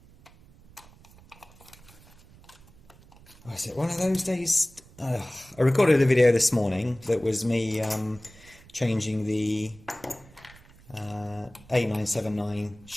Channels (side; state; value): right; noise; rumble, 24 dB below the sound